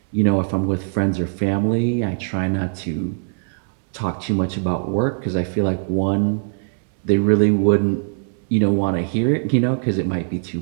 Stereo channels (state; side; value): silent; left; digital silence